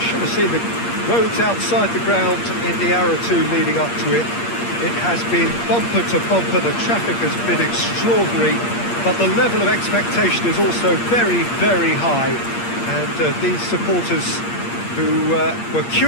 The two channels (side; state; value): right; late; 8.6 ms